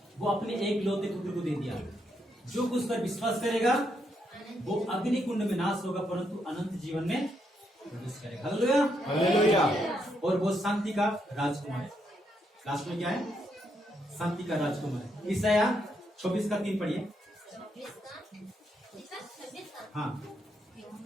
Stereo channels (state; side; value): normal; both; correlation 0.77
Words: वो अपने एकलौते पुत्र को दे दिया। जो कुछ पर विश्वास करेगा वो अग्नि कुंड में नाश होगा, परंतु अनंत जीवन में प्रवेश करेगा। Hallelujah, hallelujah. और वो शांति का राजकुमार है। लास्ट में क्या है? शांति का राजकुमार है। यशायाह 26:3 पढ़िए। हाँ,